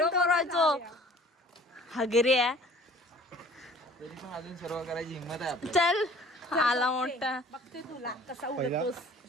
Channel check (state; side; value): normal; both; correlation 0.50